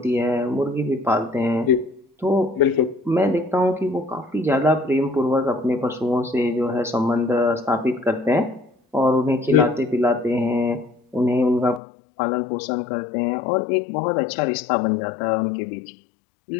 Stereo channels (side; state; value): right; drops out; at 11.8 s